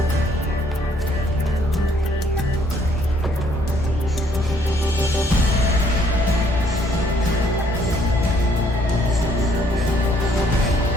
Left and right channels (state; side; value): normal; both; correlation 0.65